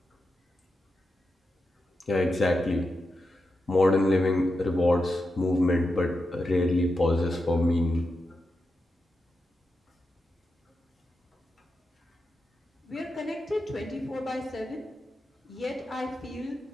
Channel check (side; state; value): both; normal; correlation 0.88